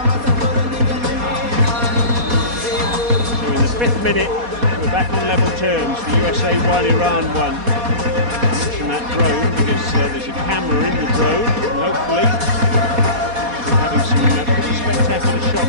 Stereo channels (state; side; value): late; left; 4.2 ms